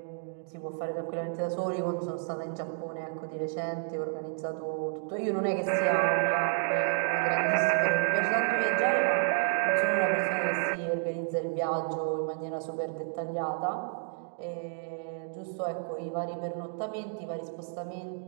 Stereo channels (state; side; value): silent; left; 57 dB below the other